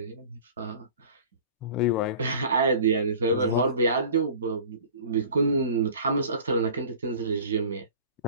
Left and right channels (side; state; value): both; inverted; correlation -0.42